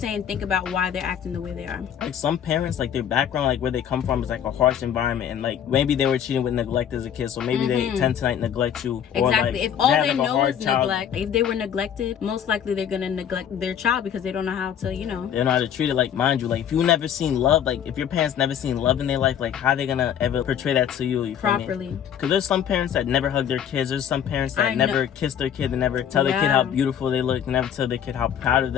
saying think about why they're acting the way they are. Like, some parents, like, their background, like where they come from is like a harsh environment, and like maybe they were cheating with neglect as a kid, so maybe they tend to like neglect you. Or, exactly. like, if all they like, know is neglect, if they were neglected, most likely they're gonna neglect their child because they don't know how to, They don't know how to treat it. Like, mind you, like, if you never seen love, like if your parents never seen love in their life, like how they gonna ever portray that to you? Properly. Because there's some parents that never hug their kids. There's some parents that never kiss their kid and never tell their kid how beautiful they look, never tell their kid how proud of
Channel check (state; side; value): quieter; right; 9.1 dB